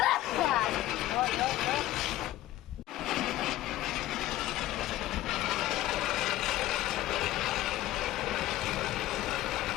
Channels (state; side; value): quieter; right; 15.1 dB